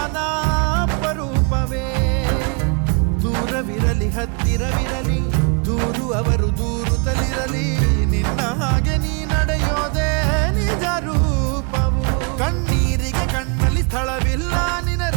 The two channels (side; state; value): left; quieter; 34.3 dB